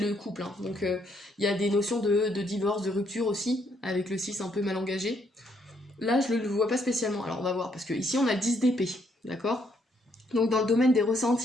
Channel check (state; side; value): normal; both; correlation 0.72